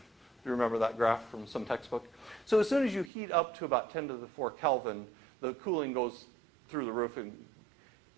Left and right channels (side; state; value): left; drops out; at 3.1 s